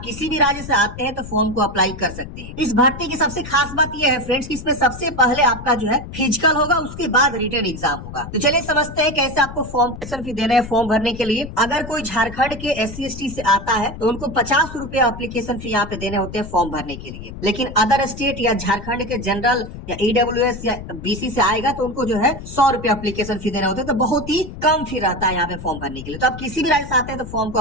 किसी भी राज्य से आते हैं तो फॉर्म को अप्लाई कर सकते हैं। इस भर्ती की सबसे खास बात यह है फ्रेंड्स कि इसमें सबसे पहले आपका जो है फिजिकल होगा, उसके बाद रिटन एग्जाम होगा। तो चलिए समझते हैं कैसे आपको फॉर्म फी देना है। फॉर्म भरने के लिए अगर कोई झारखंड के SC/ST से आता है तो उनको 50 रुपए एप्लीकेशन फी यहाँ पे देने होते हैं फॉर्म भरने के लिए। लेकिन अदर स्टेट या झारखंड के जनरल या EWS या BC से आएगा तो उनको जो है 100 रुपए एप्लीकेशन फी देने होते हैं। तो बहुत ही कम फी रहता है यहाँ पे फॉर्म भरने के लिए। तो आप किसी भी राज्य से आते हैं तो फॉर्म को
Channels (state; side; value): noise; left; rumble, 11 dB below the sound